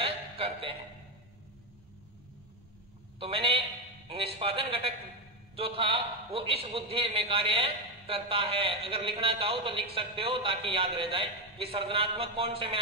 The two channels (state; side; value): normal; both; correlation 0.10